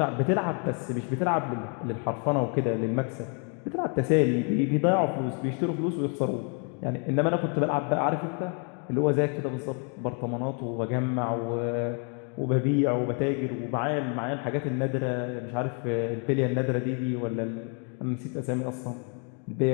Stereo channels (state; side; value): quieter; right; 39.3 dB